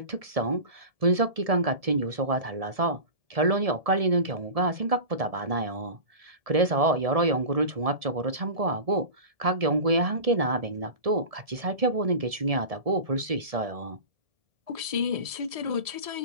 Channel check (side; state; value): left; late; 1.7 ms